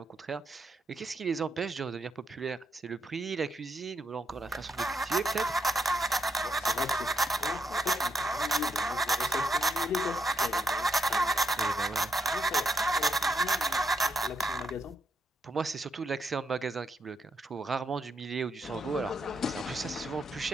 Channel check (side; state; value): both; normal; correlation 0.78